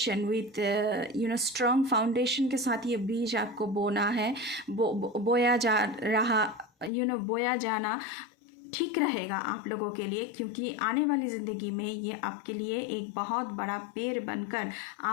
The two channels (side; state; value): right; drops out; at 6.9 s